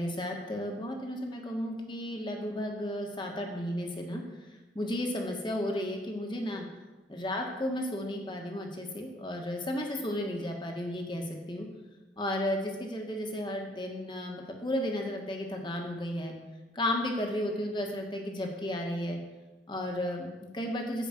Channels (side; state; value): both; normal; correlation 0.63